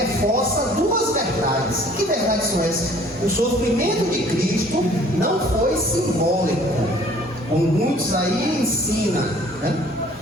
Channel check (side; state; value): both; normal; correlation 0.54